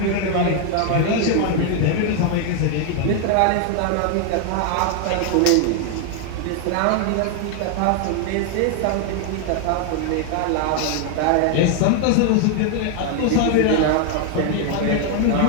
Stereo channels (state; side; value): different; both; correlation 0.00